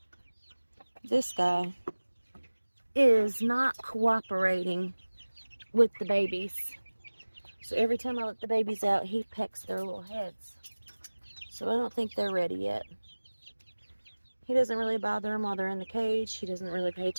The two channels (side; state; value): both; inverted; correlation -1.00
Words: This guy is not cooperating with the babies. So every time I let the babies out, he pecks their little heads. So I don't think they're ready yet. He doesn't really bother them while they're in the cage. He doesn't really pay